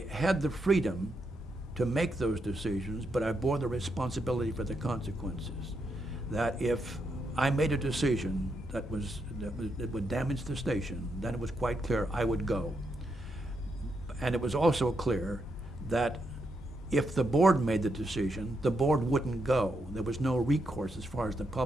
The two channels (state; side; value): normal; both; correlation 0.81